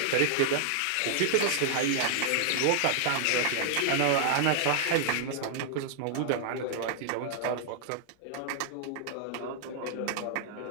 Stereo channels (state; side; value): different; both; correlation -0.01